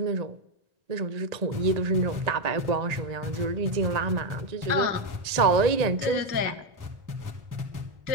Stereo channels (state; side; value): late; left; 1.8 ms